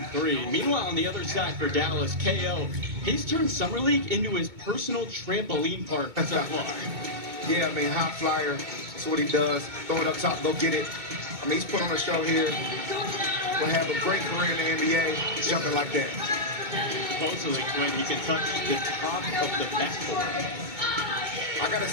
three. Meanwhile, on the other side for Dallas, KO, he's turned Summer League into his personal trampoline park so far. Yeah, I mean, high flyer. That's what he does. Throw it up top, go get it. I mean, he's put on a show here. Will have a great career in the NBA, jumping like that. Supposedly, Quinn, he can touch the top of the backboard. I gotta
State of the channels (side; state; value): left; late; 2.2 ms